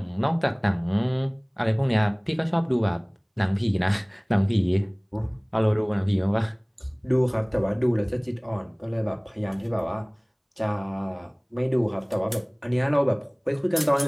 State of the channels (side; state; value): both; identical; correlation 1.00